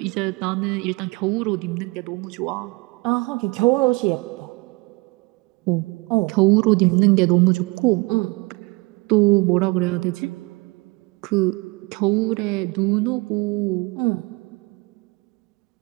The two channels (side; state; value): left; quieter; 26.4 dB